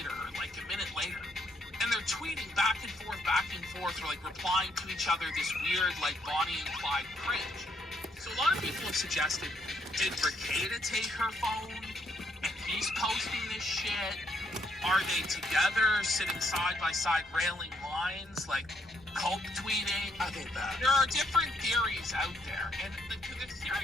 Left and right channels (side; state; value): both; normal; correlation 0.73